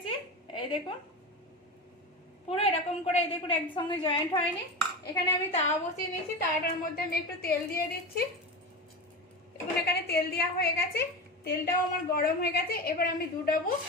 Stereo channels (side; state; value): both; normal; correlation 0.24